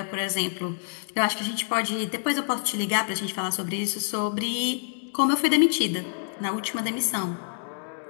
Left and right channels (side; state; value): right; silent; digital silence